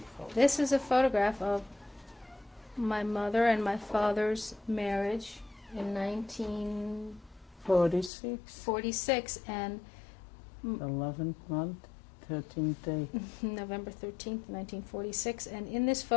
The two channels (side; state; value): right; drops out; at 8.1 s